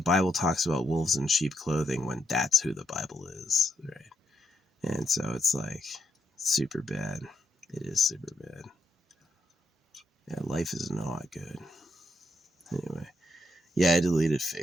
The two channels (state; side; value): normal; both; correlation 0.78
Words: talks about wolves in sheep clothing when that's who the Bible is, right? And so it's like super bad. It is super bad. Yeah, life is not good. Anyway, yeah, I deleted